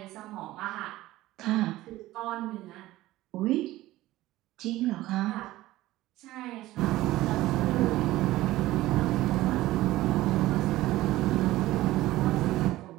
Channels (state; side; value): quieter; left; 16.6 dB